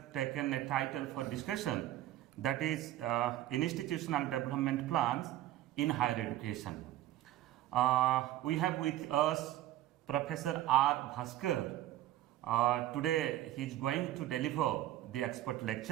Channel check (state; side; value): quieter; left; 14.0 dB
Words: taken a title for discussion, that is Institutional Development Plans in Higher Education. We have with us Professor R. Bhaskar. Today he is going to deliver the expert